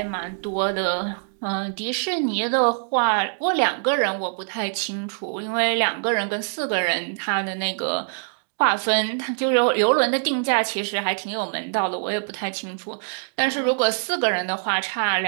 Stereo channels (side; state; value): left; silent; 63 dB below the other